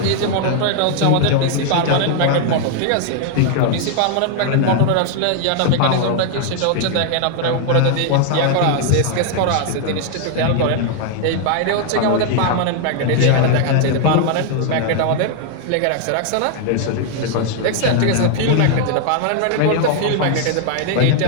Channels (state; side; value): different; both; correlation 0.00